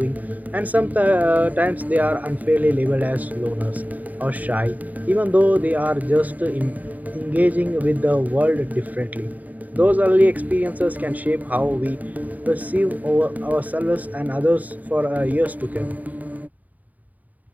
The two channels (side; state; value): left; late; 0.077 ms